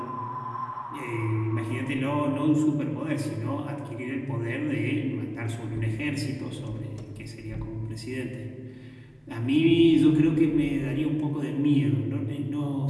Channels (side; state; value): both; identical; correlation 1.00